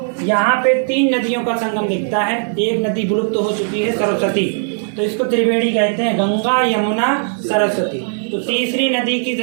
यहाँ पे 3 नदियों का संगम दिखता है। एक नदी विलुप्त हो चुकी है, सरस्वती, तो इसको त्रिवेणी कहते हैं, गंगा यमुना सरस्वती। तो तीसरी नदी की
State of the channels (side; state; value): left; silent; 59 dB below the other